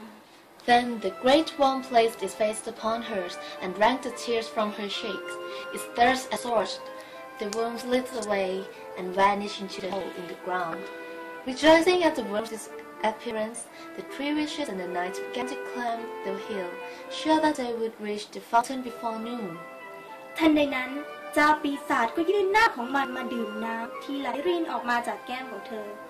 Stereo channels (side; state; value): both; identical; correlation 1.00